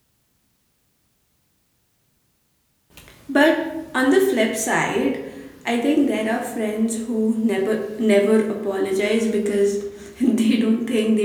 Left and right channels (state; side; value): identical; both; correlation 1.00